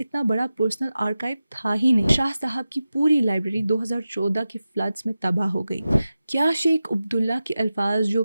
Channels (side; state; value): both; inverted; correlation -0.94